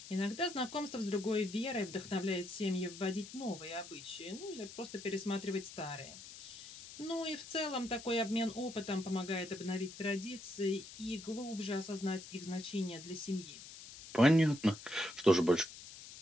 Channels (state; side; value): noise; left; hiss, 14 dB below the sound